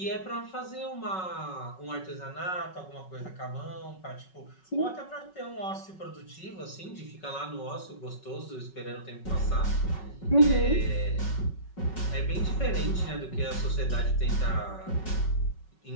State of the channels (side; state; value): right; late; 5.4 ms